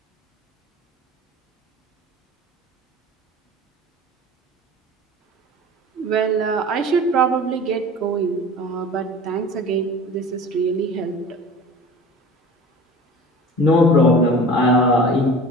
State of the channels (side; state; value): both; normal; correlation 0.39